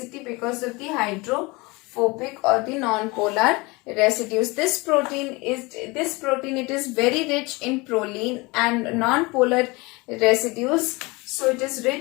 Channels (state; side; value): quieter; right; 25.0 dB